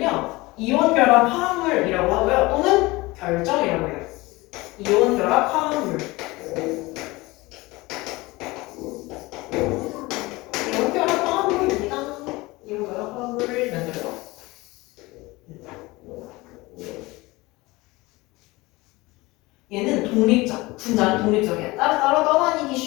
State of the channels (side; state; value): right; quieter; 21.7 dB